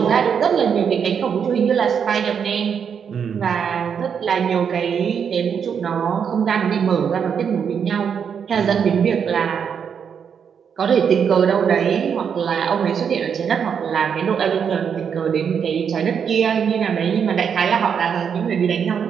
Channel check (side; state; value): left; quieter; 7.2 dB